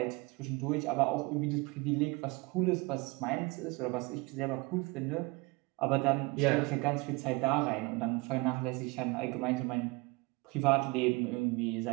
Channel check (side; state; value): left; quieter; 25.6 dB